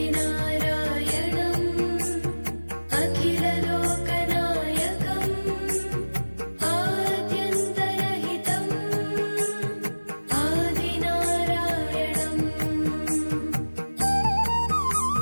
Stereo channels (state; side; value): inverted; both; correlation -1.00